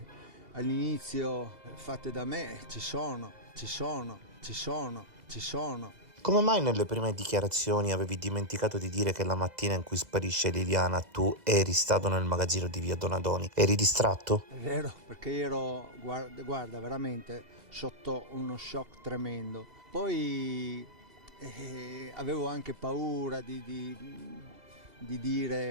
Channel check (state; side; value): late; left; 2.0 ms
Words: all'inizio fatte da me ci sono. Come mai nelle prime dichiarazioni avevi dimenticato di dire che la mattina in cui sparisce Liliana tu eri stato nel magazzino di via Donadoni? Eri distratto? È vero, perché ero, guarda, veramente sotto uno shock tremendo. Poi avevo anche paura di